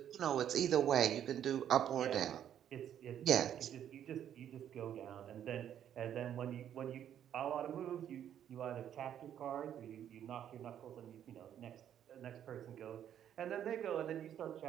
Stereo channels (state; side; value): quieter; left; 10.0 dB